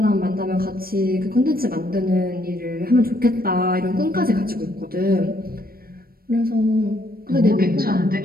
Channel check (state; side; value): late; left; 0.43 ms